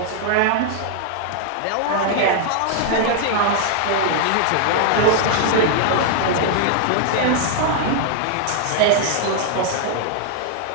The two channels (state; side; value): different; both; correlation -0.01